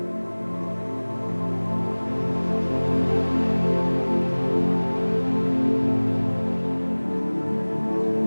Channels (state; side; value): inverted; both; correlation -1.00